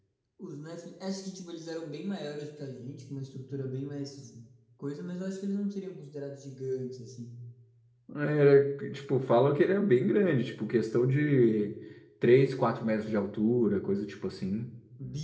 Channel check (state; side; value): identical; both; correlation 1.00